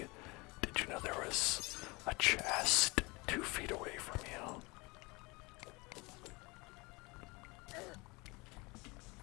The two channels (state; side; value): quieter; right; 25.7 dB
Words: did you know there was a chest 2 feet away from you?